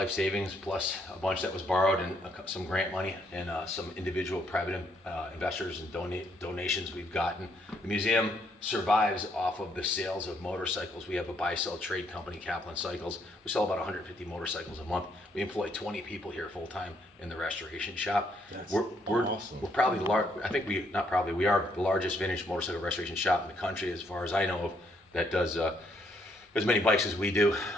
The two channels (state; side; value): normal; both; correlation 0.72